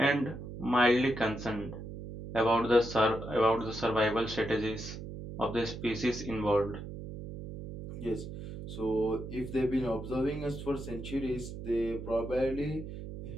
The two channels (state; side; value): noise; right; hum, 9 dB below the sound